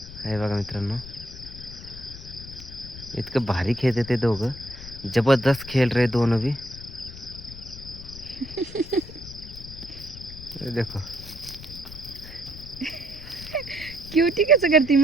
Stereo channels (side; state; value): left; noise; rumble, 14 dB below the sound